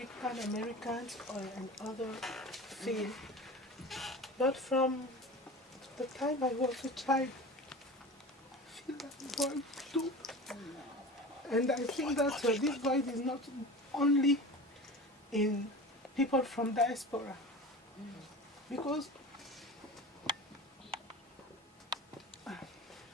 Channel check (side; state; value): both; normal; correlation 0.34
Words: Americans and other feel. But from the time I was a child, I feel that void too. And I think that this void is not only in people from diaspora. Because